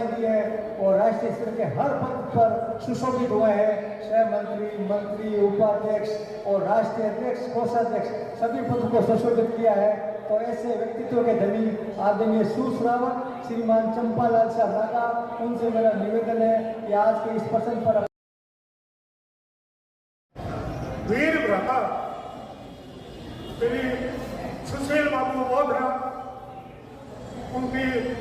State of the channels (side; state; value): both; identical; correlation 1.00